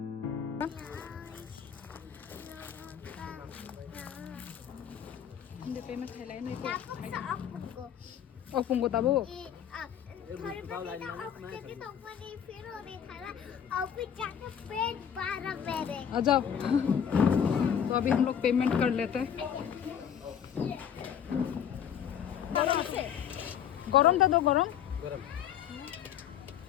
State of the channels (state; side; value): quieter; right; 8.8 dB